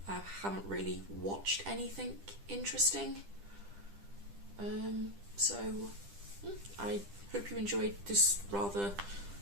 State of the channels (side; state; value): left; late; 10 ms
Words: I haven't really watched anything interesting. So I hope you enjoyed this rather